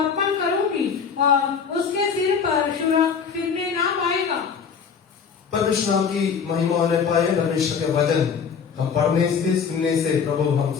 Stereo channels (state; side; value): quieter; right; 6.4 dB